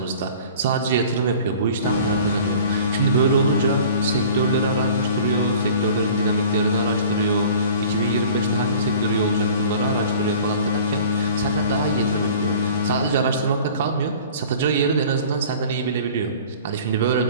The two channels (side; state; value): both; inverted; correlation -0.45